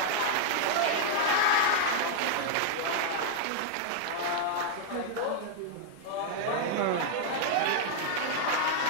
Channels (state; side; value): different; both; correlation -0.01